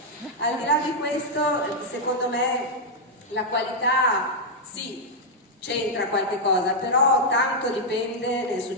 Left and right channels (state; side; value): normal; both; correlation -0.04